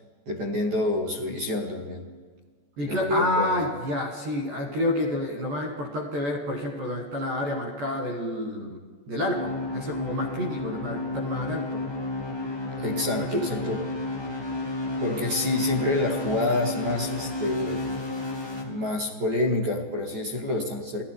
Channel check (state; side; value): late; left; 14 ms